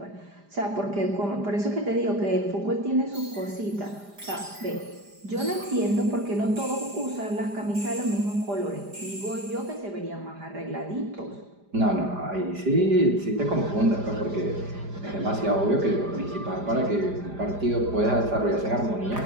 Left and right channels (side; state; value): left; late; 5.0 ms